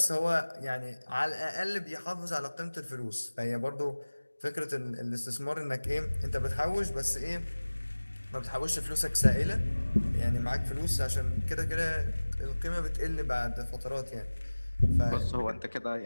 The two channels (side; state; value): both; inverted; correlation -1.00